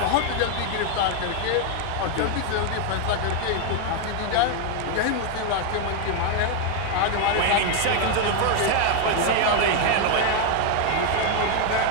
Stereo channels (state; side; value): different; both; correlation 0.01